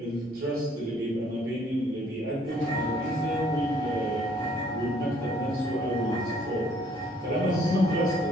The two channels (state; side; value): normal; both; correlation 0.62